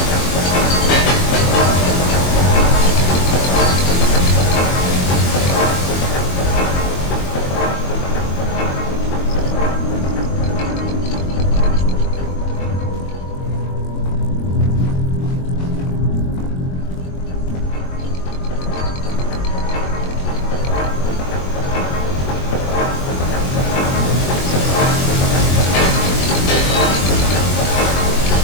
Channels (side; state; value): right; late; 22 ms